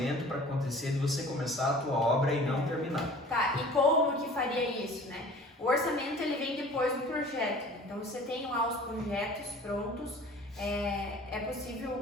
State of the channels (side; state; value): both; normal; correlation 0.45